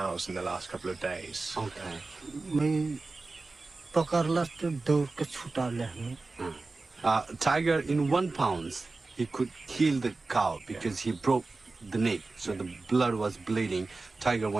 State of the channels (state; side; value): quieter; left; 3.6 dB